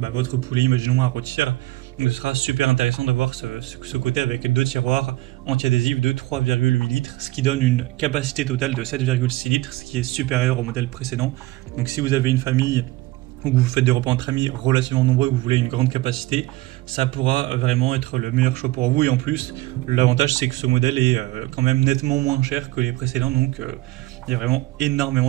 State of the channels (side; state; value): left; quieter; 18.2 dB